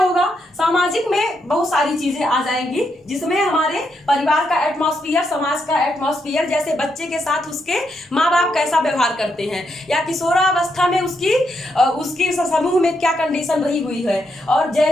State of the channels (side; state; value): both; normal; correlation 0.80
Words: सामाजिक में बहुत सारी चीजें आ जाएंगी, जिसमें हमारे परिवार का एटमॉस्फेयर, समाज का एटमॉस्फेयर, जैसे बच्चे के साथ उसके माँ बाप कैसा व्यवहार करते हैं, या किशोरावस्था में उसकी समूह में क्या कंडीशन रही हुई है। और